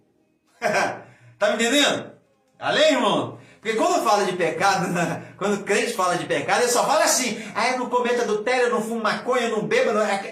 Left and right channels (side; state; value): both; identical; correlation 1.00